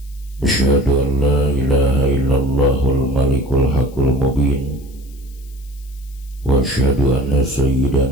Asyhadu an la ilaha illallahul malikul haqqul mubin wa asyhadu anna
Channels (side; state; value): left; noise; hiss, 27 dB below the sound